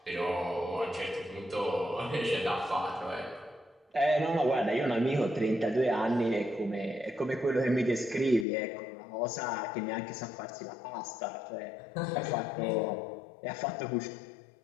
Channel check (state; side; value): drops out; right; at 8.5 s